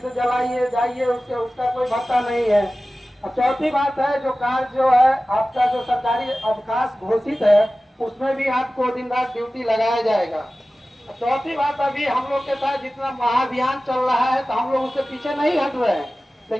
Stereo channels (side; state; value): both; normal; correlation 0.96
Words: जलाइए जाइए, उसका कोई भत्ता नहीं है। और चौथी बात है जो कार्य जो है आपका जो सरकारी अवकाश घोषित है उसमें भी आपको दिन रात ड्यूटी लगाया जाएगा। चौथी बात, अभी हम लोग के साथ जितना महाअभियान चल रहा है तो हम लोग उससे पीछे नहीं हट रहे हैं,